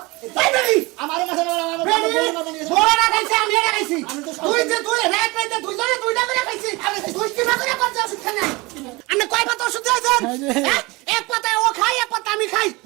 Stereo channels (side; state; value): left; quieter; 23.8 dB